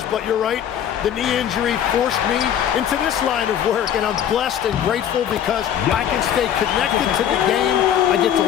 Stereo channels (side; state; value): right; quieter; 9.7 dB